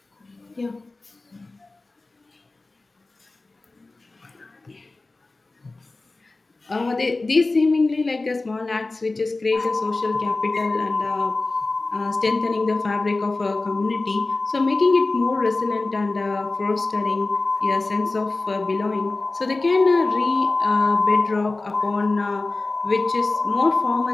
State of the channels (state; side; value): quieter; right; 3.3 dB